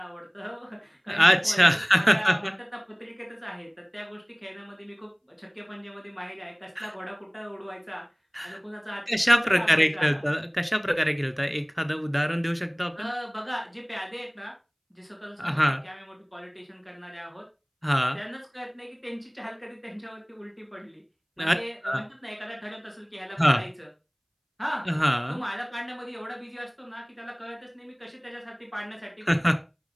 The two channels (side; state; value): both; identical; correlation 1.00